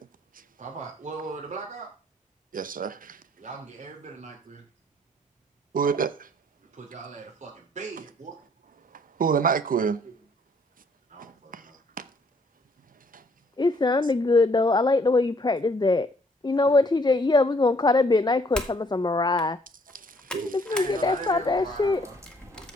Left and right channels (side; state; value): both; normal; correlation 0.64